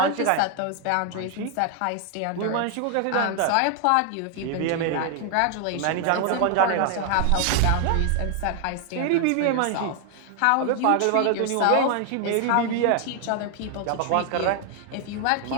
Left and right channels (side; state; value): both; different; correlation 0.00